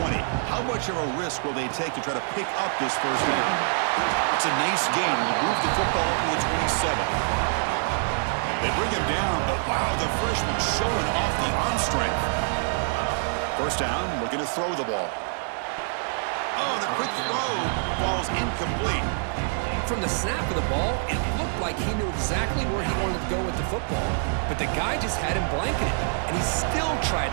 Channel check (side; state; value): left; silent; 61 dB below the other